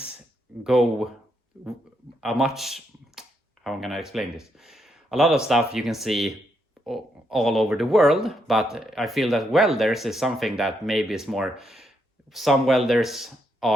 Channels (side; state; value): both; normal; correlation 0.78